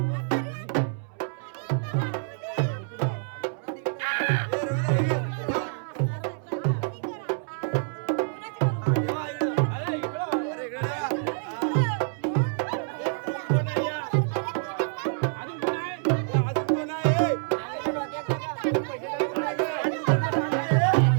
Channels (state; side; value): silent; left; 60 dB below the other